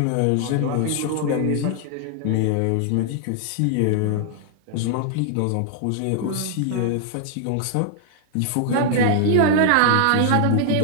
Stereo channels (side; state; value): both; different; correlation 0.00